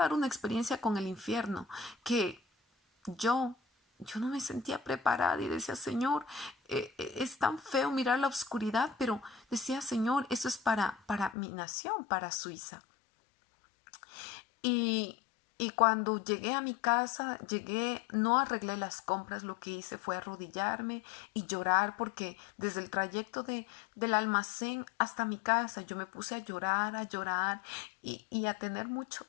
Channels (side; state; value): right; drops out; at 11.4 s